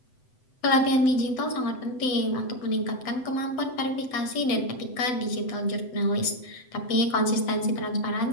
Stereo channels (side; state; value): right; late; 7.9 ms